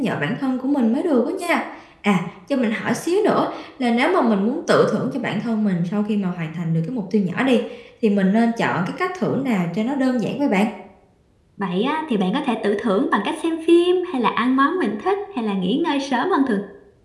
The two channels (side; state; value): both; identical; correlation 1.00